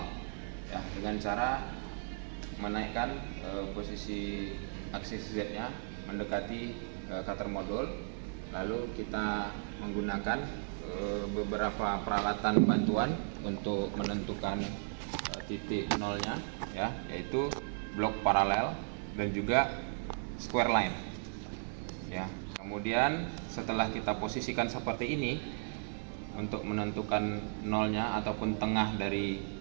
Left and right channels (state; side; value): silent; left; digital silence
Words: ya, dengan cara menaikkan posisi aksis Z-nya mendekati cutter modul. Lalu kita menggunakan beberapa peralatan bantuan untuk menentukan titik nolnya ya, yaitu blok paralel dan juga square line ya. Kemudian setelah kita posisikan seperti ini, untuk menentukan nolnya ataupun tengah dari